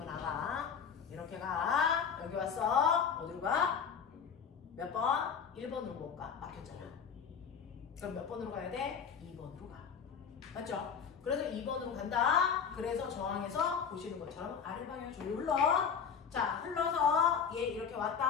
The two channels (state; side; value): quieter; right; 6.8 dB